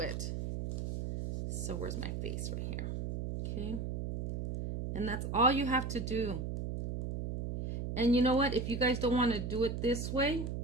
So where's my face? Right here. Okay. And that's all you have to do. And you know what? If you guys don't want to do it this way,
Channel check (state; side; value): noise; right; hum, 4 dB below the sound